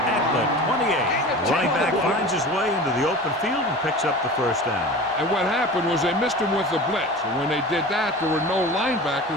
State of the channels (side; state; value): both; normal; correlation 0.35